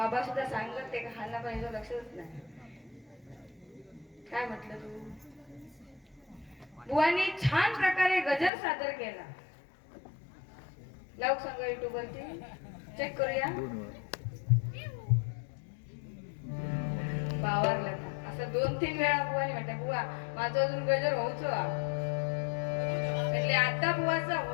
सुद्धा सांगत ते का हाना पाहिजे लक्षच नाही काय म्हटलं तू बुवानी छान प्रकारे गजर सादर केला लावू सांगा युट्यूब वरती चेक करूया बावरला असं 2-3 वेळा बुवानी म्हटलं बुवा माझं अजून गजर होऊच म्हणजे आता बुवाचा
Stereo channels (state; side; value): drops out; right; at 8.5 s